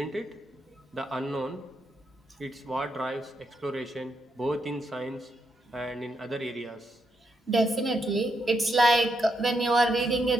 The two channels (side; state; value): both; normal; correlation 0.80